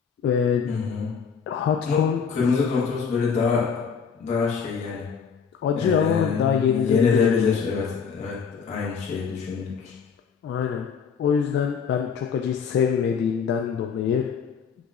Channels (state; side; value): quieter; right; 6.3 dB